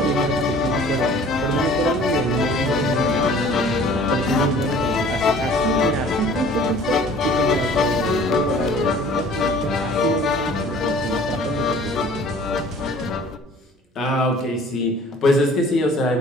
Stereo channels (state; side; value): normal; both; correlation 0.50